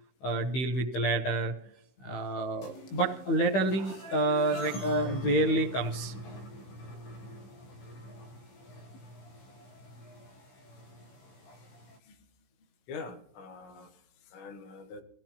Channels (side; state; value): right; late; 15 ms